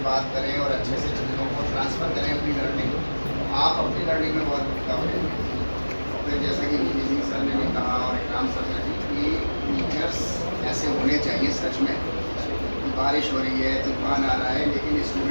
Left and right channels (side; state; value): both; inverted; correlation -1.00